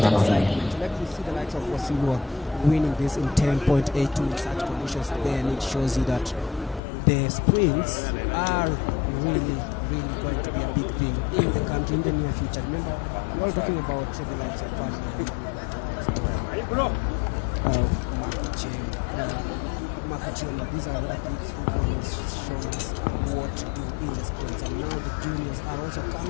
Let me see the likes of Wasilwa winning this in 10.82 in such conditions. Then it shows you that the sprints are really going to be a big thing in the country in the near future. Remember, we're all talking about the likes of Ferdinand, the likes of Marco Cheng, Marco Chiono. These are the athletes who've always shown us what to do in the sprints, and now the juniors are also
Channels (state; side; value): drops out; right; at 6.8 s